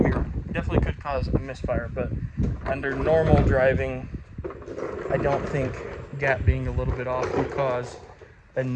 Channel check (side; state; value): both; identical; correlation 1.00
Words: me wrong. It definitely could cause a misfire, but under normal driving, I don't think gap being a little bit off would cause